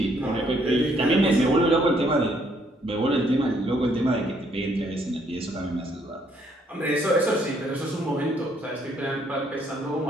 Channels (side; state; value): both; normal; correlation 0.68